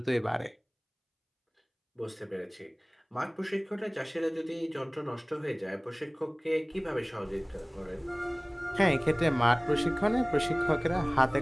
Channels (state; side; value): identical; both; correlation 1.00